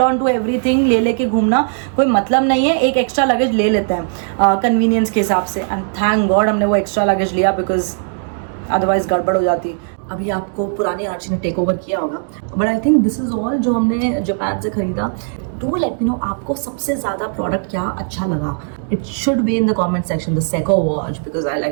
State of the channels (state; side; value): silent; left; digital silence